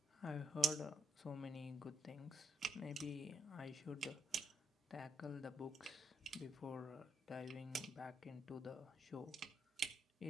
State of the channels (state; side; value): normal; both; correlation 0.77